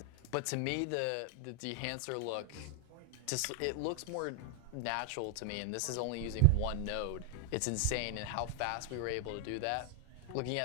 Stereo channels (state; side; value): different; both; correlation 0.00